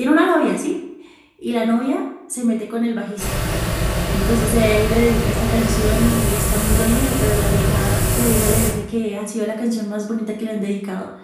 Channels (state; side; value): identical; both; correlation 1.00